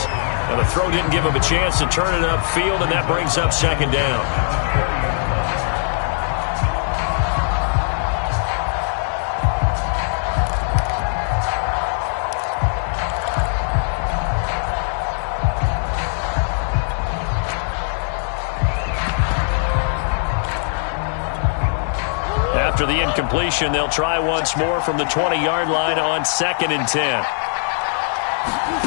And the throw didn't give him a chance to turn it upfield, and that brings up second down. After the incompletion, they'll try once more from the 20-yard line on 2nd and 10.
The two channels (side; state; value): right; silent; digital silence